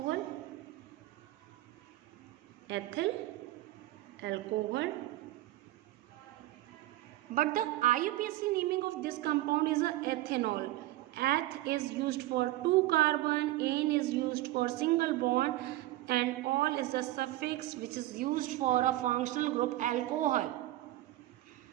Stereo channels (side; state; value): left; quieter; 16.4 dB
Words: But the IUPAC naming of this compound is a ethanol. Eth is used for 2 carbon, N is used for single bond, and ol is the suffix which is used for a functional group alcohol.